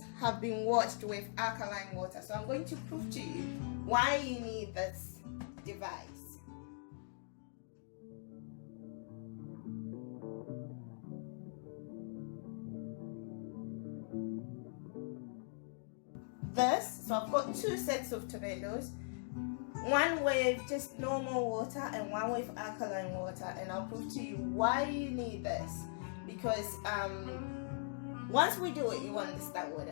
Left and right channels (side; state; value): right; silent; digital silence